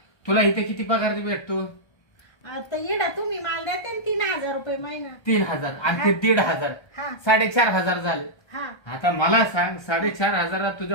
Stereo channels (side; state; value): right; late; 1.3 ms